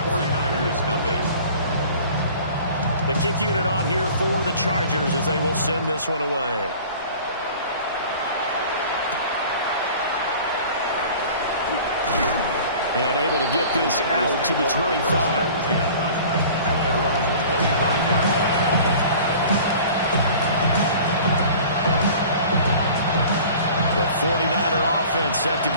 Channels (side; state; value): both; inverted; correlation -0.45